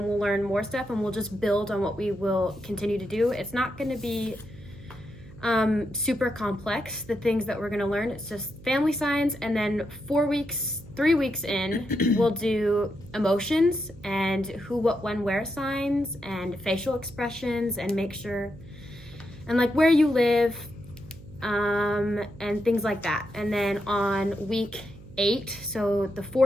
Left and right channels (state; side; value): noise; right; hum, 18 dB below the sound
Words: we'll learn more stuff, and we'll just build on what we will continue to do. It's not going to be super complex, the things that we're going to learn. It's just family signs, and then 3 weeks in, we'll do emotions and who, what, when, where signs and facial expressions, and make sure, and like where you live, and things like that. And then on week 8, so the